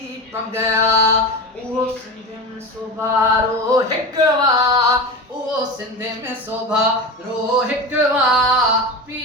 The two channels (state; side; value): normal; both; correlation 0.25